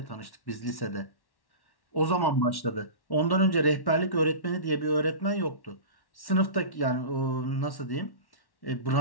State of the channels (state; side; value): late; right; 1.1 ms